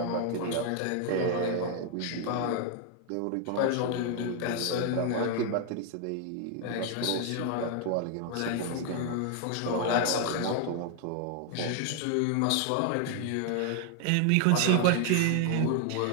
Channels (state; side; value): different; both; correlation 0.00